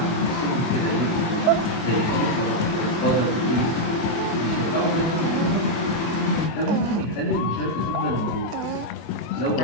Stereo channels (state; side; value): late; right; 24 ms